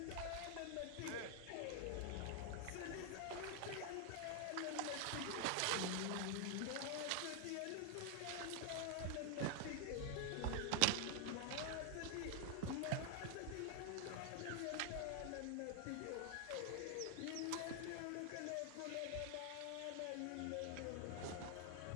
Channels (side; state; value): both; different; correlation 0.00